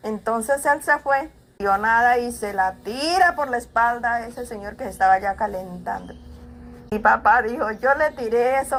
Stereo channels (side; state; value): both; identical; correlation 1.00